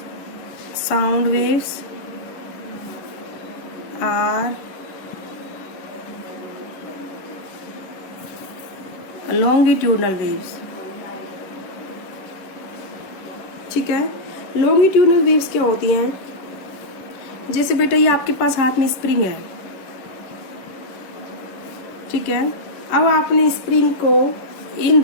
Sound waves are longitudinal waves. ठीक है, लॉन्गिट्यूडनल वेव्स क्या होती हैं? जैसे बेटा ये आपके पास हाथ में स्प्रिंग है। ठीक है, अब आपने स्प्रिंग को इन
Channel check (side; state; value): right; late; 10 ms